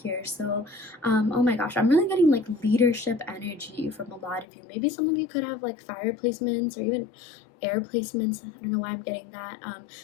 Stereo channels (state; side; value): drops out; right; at 4.5 s